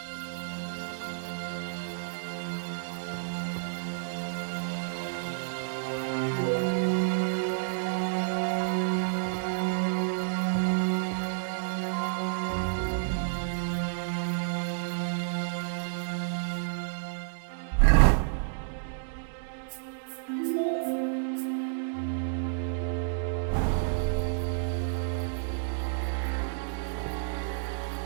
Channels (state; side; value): silent; left; digital silence